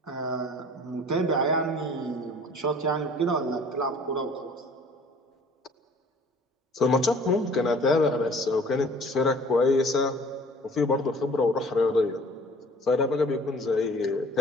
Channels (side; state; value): both; normal; correlation 0.50